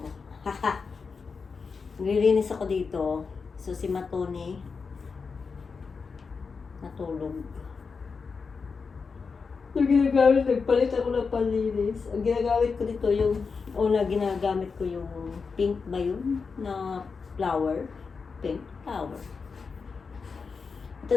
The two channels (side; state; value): right; quieter; 5.1 dB